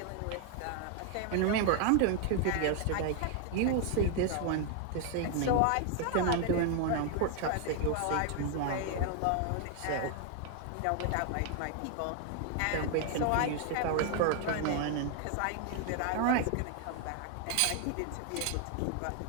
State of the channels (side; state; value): both; different; correlation 0.00